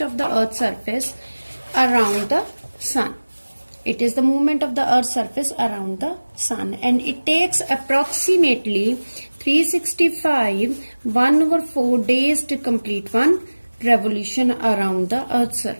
of the earth's surface around the sun. It is the movement of the earth's surface around the sun, and it takes approximately 365 1/4 days to complete one revolution around the earth's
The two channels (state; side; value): inverted; both; correlation -1.00